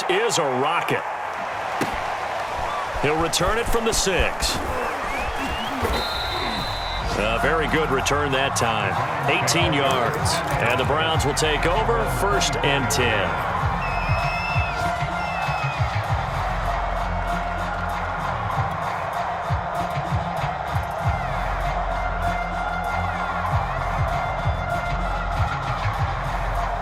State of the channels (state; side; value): identical; both; correlation 1.00